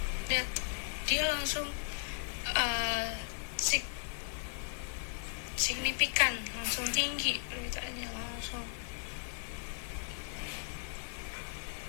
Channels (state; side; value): silent; right; 53 dB below the other